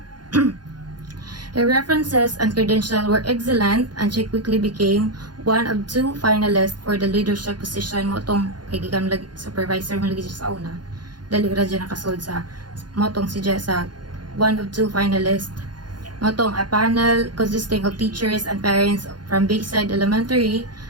Her references and credentials were excellent and she quickly became one of 2 finalists for the leadership position. Motong kay gigam supervisor mo lagi siya sa una. Dali ra dyan nakasold sa motong si sa one of 2 finalists. Motong a panel consisting of teachers and parents from Bayside Elementary,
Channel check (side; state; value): left; late; 0.70 ms